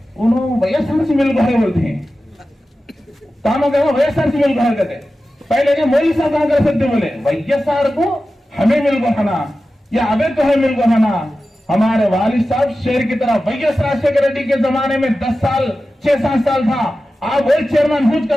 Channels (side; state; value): both; normal; correlation 0.94